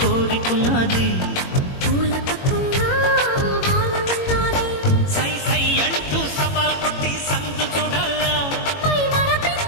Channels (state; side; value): late; right; 21 ms